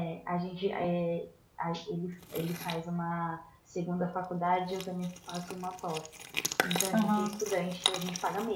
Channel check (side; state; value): both; identical; correlation 1.00